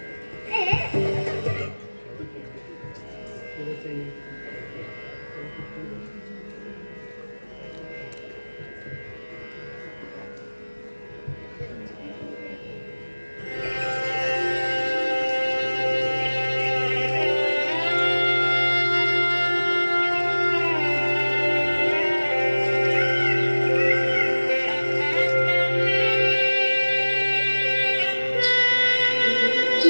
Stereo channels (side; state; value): both; inverted; correlation -1.00